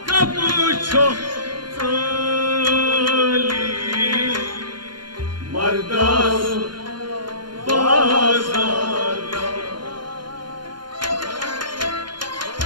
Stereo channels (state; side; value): late; left; 0.71 ms